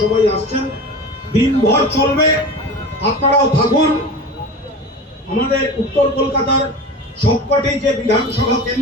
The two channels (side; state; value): both; normal; correlation 0.32